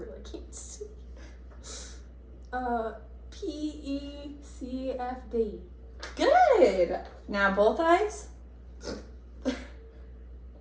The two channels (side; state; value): both; identical; correlation 1.00